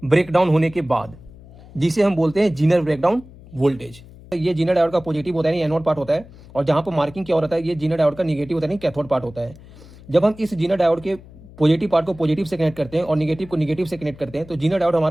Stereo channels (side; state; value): left; noise; hum, 20 dB below the sound